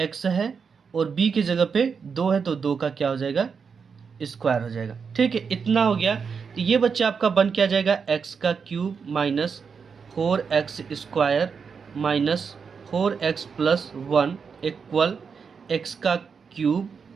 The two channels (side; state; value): left; quieter; 5.9 dB